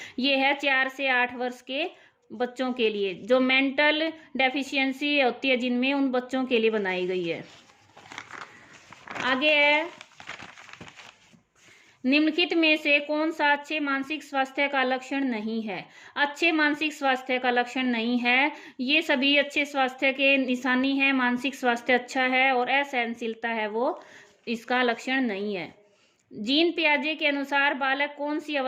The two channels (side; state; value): both; identical; correlation 1.00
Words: ये है 4 से 8 वर्ष के बच्चों के लिए, जो मेंटल डेफिशिएंसी होती है जिनमें, उन बच्चों के लिए बनाई गई है। आगे है, निम्नलिखित में से कौन सा अच्छे मानसिक स्वास्थ्य का लक्षण नहीं है? अच्छे मानसिक स्वास्थ्य का लक्षण नहीं है, ये सभी अच्छे स्वास्थ्य के निशानी है। मानसिक स्वास्थ्य अच्छा है और असहनशीलता है वो इसका लक्षण नहीं है। जीन पियाजे के अनुसार बालक कौन सी